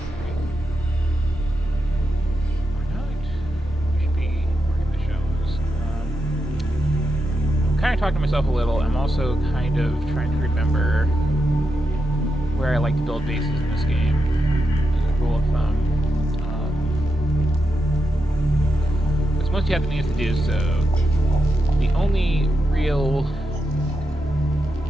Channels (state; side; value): normal; both; correlation 0.87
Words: Or not? We should be working the shows. I'm kind of talking to myself a little. I'm also kind of trying to remember where I like to build bases in this game, as a rule of thumb. Because once you have the means to do so, the only real